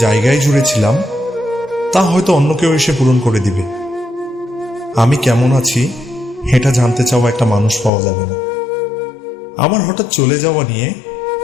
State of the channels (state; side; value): drops out; right; at 7.9 s